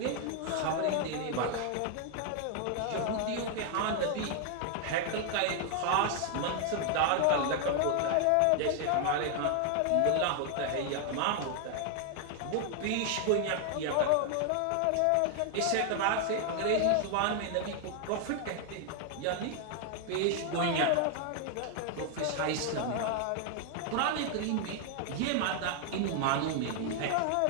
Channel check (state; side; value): different; both; correlation 0.00